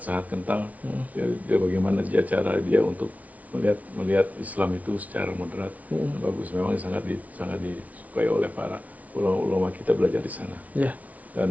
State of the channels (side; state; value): left; late; 0.070 ms